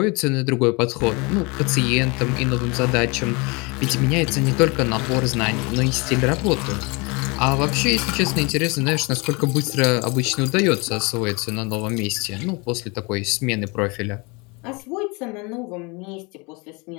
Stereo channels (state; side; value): quieter; right; 28.5 dB